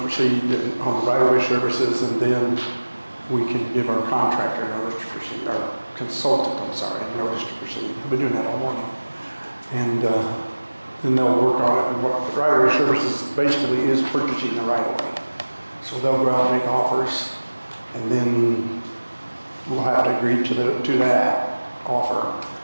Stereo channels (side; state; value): both; inverted; correlation -1.00